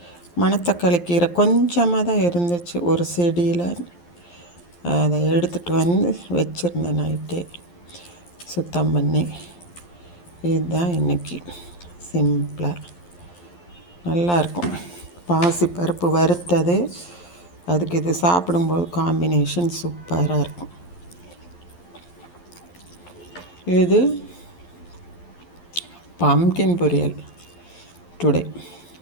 மணத்தக்காளி கீரை கொஞ்சமாக தான் இருந்துச்சு ஒரு செடியில். அதை எடுத்துகிட்டு வந்து வச்சுருந்தேன் நைட்டே சுத்தம் பண்ணி. இதுதான் இன்றைக்கி சிம்பிளாக நல்லாயிருக்கும். பாசி பருப்பு வறுத்தது, அதுக்கு இது சாப்பிடும்போது காம்பினேஷன் சூப்பராக இருக்கும். இது பம்கின் பொரியல் டுடே.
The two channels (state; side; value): late; right; 11 ms